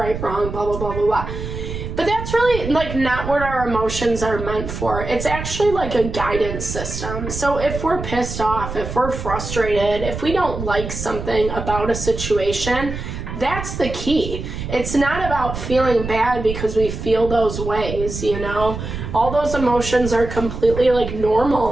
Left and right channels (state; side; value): noise; right; rumble, 7 dB below the sound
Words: wrong, blah, blah, blah, blah, blah. But that's really not what our emotions are meant for. It's actually a guidance system. So if we're pissed off, if we're frustrated, if we don't like something about a situation, that's the key. It's not about feeling bad because we feel those ways, All those emotions are completely